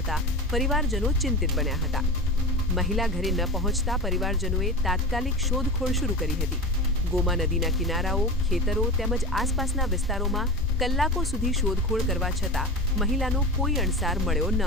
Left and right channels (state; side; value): normal; both; correlation 0.27